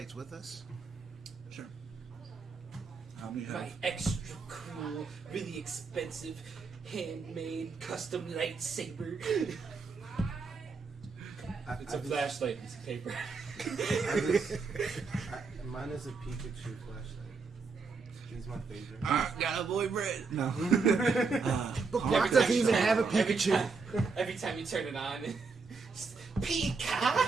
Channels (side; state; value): left; quieter; 4.6 dB